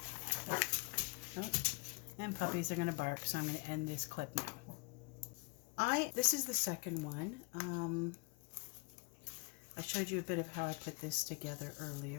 Oh, and puppies are going to bark, so I'm going to end this clip now. This is the second one. I showed you a bit of how I put this together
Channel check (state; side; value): quieter; right; 30.3 dB